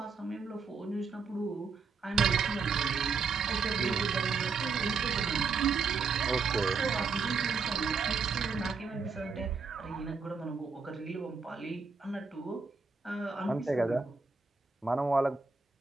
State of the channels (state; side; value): quieter; left; 5.0 dB